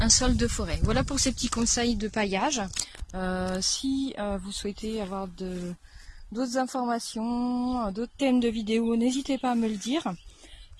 sol de forêt. Voilà pour ces petits conseils de paillage. Si vous souhaitez avoir d'autres informations, d'autres thèmes de vidéos, n'hésitez pas à me le dire.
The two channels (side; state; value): both; identical; correlation 1.00